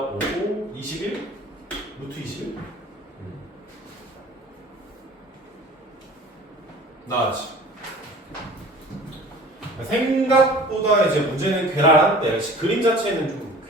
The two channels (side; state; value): both; normal; correlation 0.44